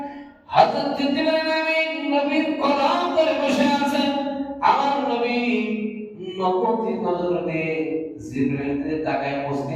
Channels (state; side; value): identical; both; correlation 1.00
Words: হযরত জিবরাইল আমিন নবীর কদম ধরে বসে আছেন আমার নবী নবতী নজর দিয়ে জিবরাইলের তাকায় মুস্তি